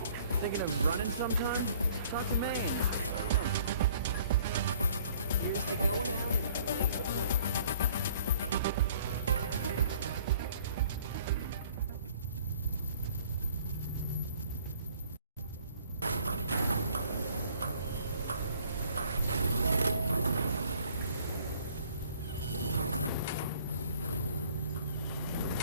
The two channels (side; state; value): both; inverted; correlation -0.54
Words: Thinking of running sometime? Talk to Maine. Here's to going out and blazing away.